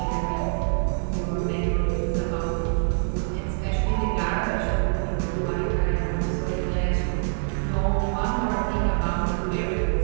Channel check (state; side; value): silent; left; 62 dB below the other